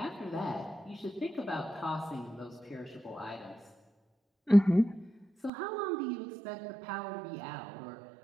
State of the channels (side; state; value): left; drops out; at 5.5 s